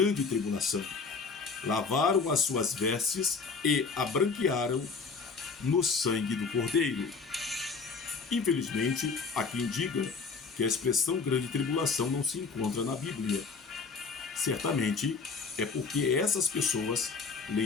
tribulação. Lavaram as suas vestes e a branquearam no sangue do Cordeiro. Infelizmente, há quem diga que a expressão grande tribulação não se encontra na Bíblia. Certamente é porque essas pessoas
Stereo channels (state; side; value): quieter; right; 4.8 dB